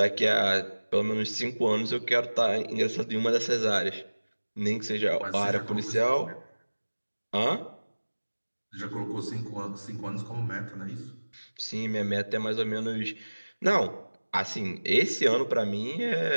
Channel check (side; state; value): both; inverted; correlation -1.00